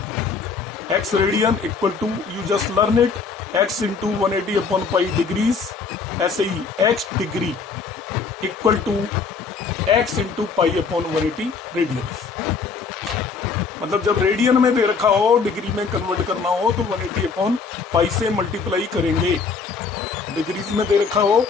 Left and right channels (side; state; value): right; quieter; 5.1 dB